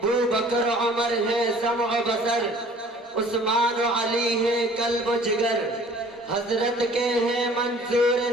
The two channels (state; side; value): normal; both; correlation 0.51